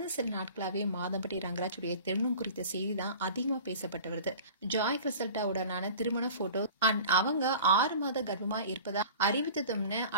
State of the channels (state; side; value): inverted; both; correlation -0.41